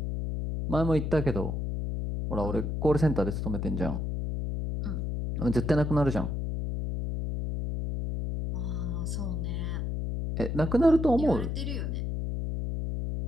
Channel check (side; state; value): left; noise; hum, 2 dB below the sound